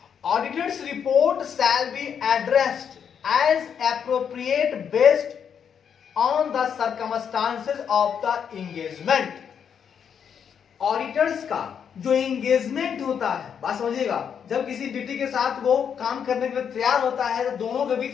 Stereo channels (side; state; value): right; quieter; 7.7 dB